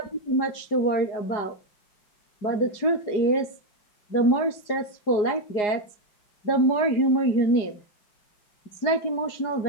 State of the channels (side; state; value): right; late; 4.8 ms